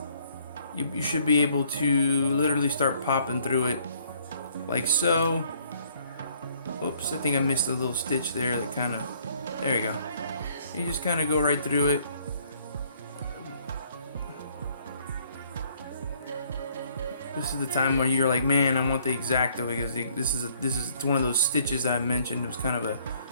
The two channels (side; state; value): both; inverted; correlation -0.62